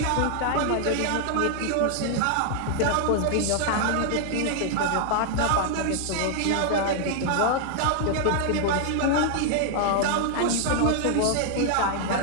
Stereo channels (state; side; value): different; both; correlation 0.00